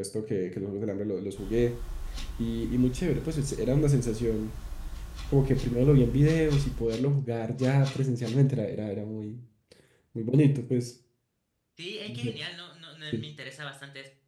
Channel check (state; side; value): identical; both; correlation 1.00